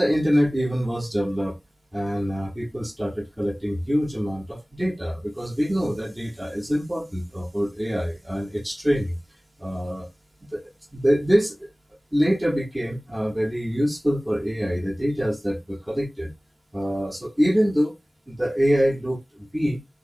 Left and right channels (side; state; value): both; normal; correlation 0.98